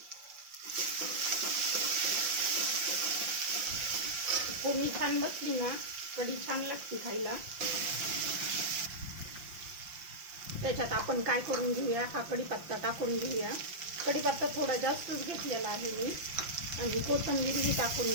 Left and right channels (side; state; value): left; late; 5.7 ms